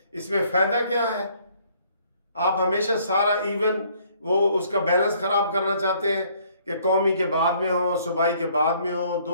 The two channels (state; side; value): inverted; both; correlation -0.63